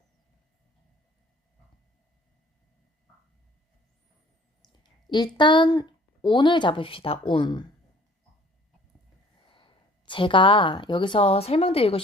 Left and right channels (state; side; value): normal; both; correlation 0.54